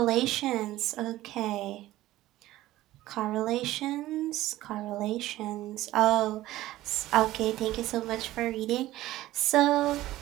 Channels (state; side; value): quieter; left; 15.8 dB